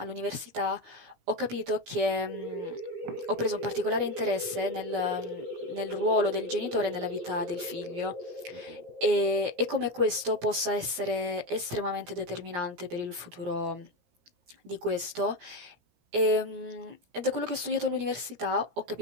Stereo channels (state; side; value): late; left; 17 ms